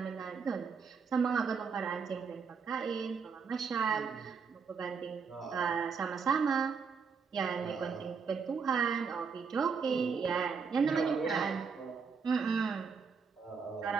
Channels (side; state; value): left; quieter; 5.7 dB